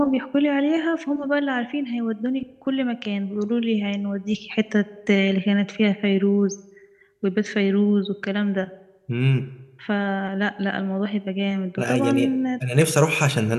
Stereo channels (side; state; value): both; identical; correlation 1.00